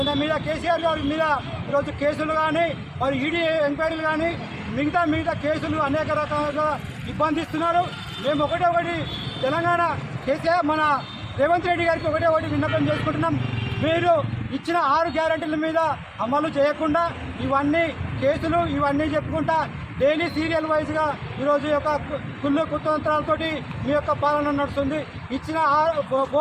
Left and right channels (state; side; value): identical; both; correlation 1.00